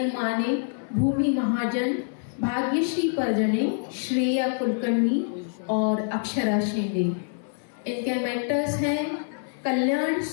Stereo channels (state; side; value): silent; right; 57 dB below the other